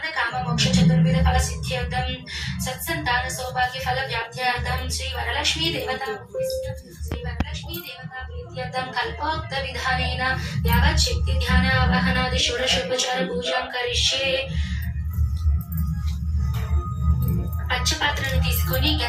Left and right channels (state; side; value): identical; both; correlation 1.00